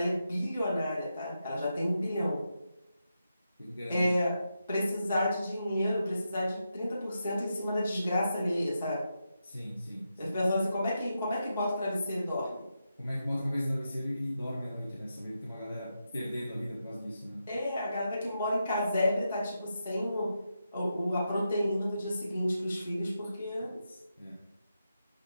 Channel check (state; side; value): inverted; both; correlation -0.86